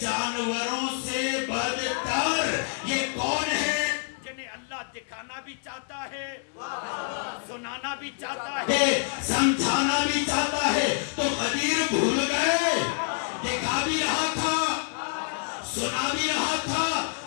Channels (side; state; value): right; silent; 60 dB below the other